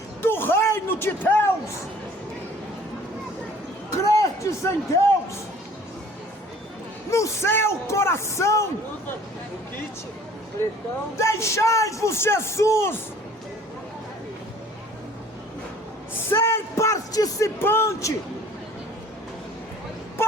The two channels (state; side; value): normal; both; correlation 0.52